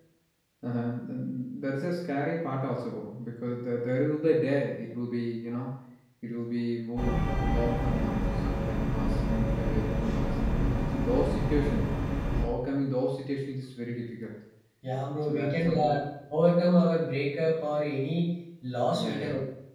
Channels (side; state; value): both; identical; correlation 1.00